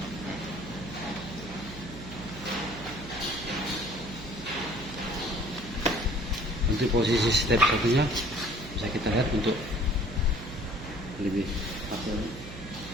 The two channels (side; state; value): right; noise; hum, 12 dB below the sound